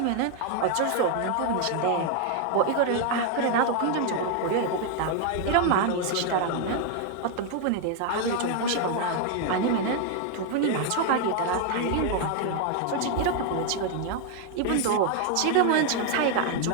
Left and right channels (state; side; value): different; both; correlation 0.01